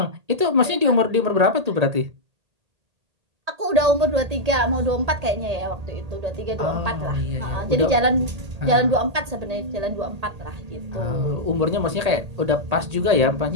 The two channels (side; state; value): left; late; 1.8 ms